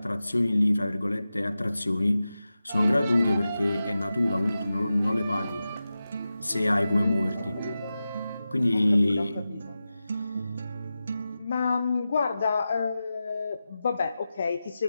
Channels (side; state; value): both; inverted; correlation -0.93